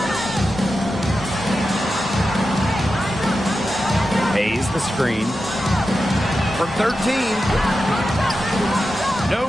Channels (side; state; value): both; normal; correlation 0.91